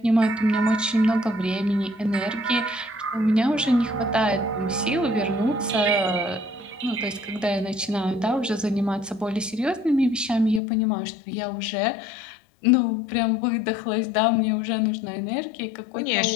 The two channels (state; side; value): drops out; right; at 10.6 s